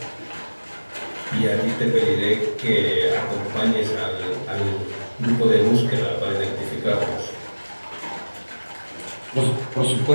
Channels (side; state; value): both; inverted; correlation -1.00